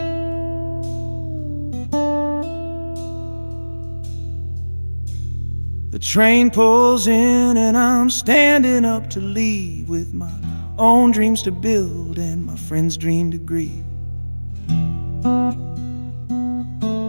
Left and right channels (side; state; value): both; inverted; correlation -1.00